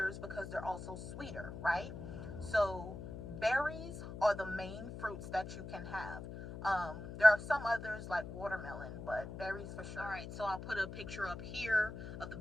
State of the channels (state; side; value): noise; left; hum, 9 dB below the sound